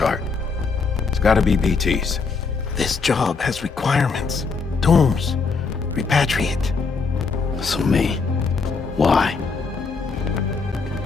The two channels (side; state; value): right; quieter; 4.7 dB